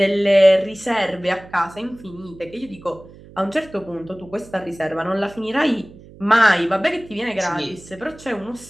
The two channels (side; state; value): right; noise; hum, 21 dB below the sound